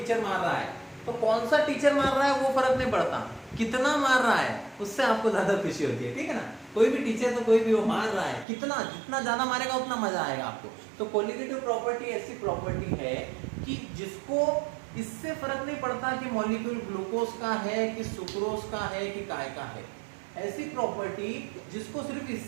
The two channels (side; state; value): left; drops out; at 8.5 s